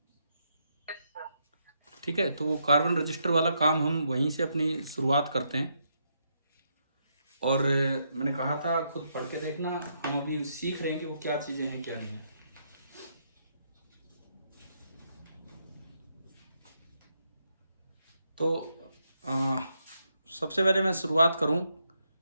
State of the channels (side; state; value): both; inverted; correlation -0.78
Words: ठीक है। तो वो कार्बन रजिस्टर वाला काम हम वहीं से अपनी शुरुआत करते हैं। और मैंने कहा था खुद पढ़ के देखना, हम अभी सीख रहे हैं कि वो क्या चीज़ें हैं क्या नहीं है। तो आ, सबसे पहले मैं शुरुआत करूं,